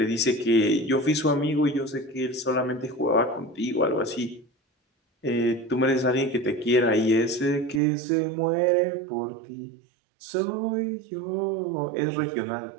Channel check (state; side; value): drops out; left; at 7.8 s